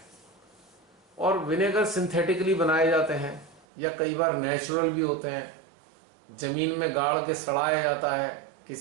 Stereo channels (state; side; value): drops out; left; at 3.7 s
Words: और विनेगर सिंथेटिकली बनाए जाते हैं या कई बार नेचुरल भी होते हैं। जमीन में गाड़ के सड़ाया जाता है